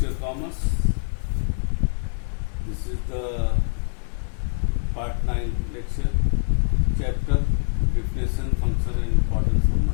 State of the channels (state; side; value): silent; right; 58 dB below the other